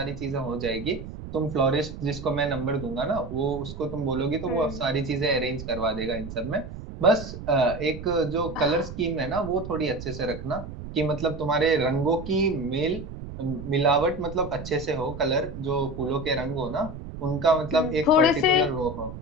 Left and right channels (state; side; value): noise; right; rumble, 10 dB below the sound